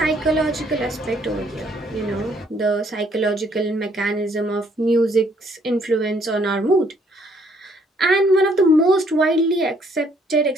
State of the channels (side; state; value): both; normal; correlation 0.66